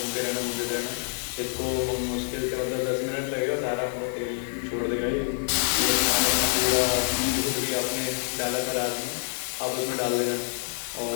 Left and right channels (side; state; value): right; silent; digital silence